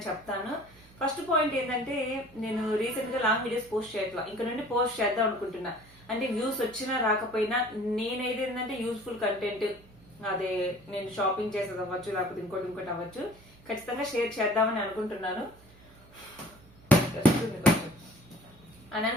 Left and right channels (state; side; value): noise; right; hum, 25 dB below the sound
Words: చెప్తాను. ఫస్ట్ పాయింట్ ఏంటంటే, నేను రీసెంట్ గా లాంగ్ వీడియోస్ పోస్ట్ చేయట్లా, ఇంకా నుండి పోస్ట్ చేద్దాం అనుకుంటున్నా. అంటే వ్యూస్ వచ్చినా రాకపోయినా నేనైతే ఏంటంటే యూస్ఫుల్ కంటెంట్, అదే నేను షాపింగ్ చేసేది అవ్వచ్చు, లేకపోతే ఇంకోటి అవ్వచ్చు, ఖచ్చితంగా షేర్ చేద్దామని అనుకుంటున్నాను అని